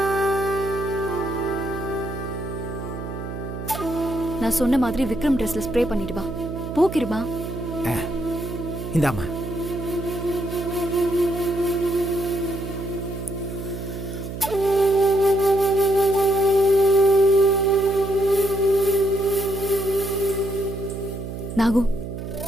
நான் சொன்ன மாதிரி விக்ரம் ட்ரெஸ்ல ஸ்ப்ரே பண்ணிட்டு வா. போக்கிருமா. இந்தாம்மா. நாகு,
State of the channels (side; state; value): right; noise; hum, 7 dB below the sound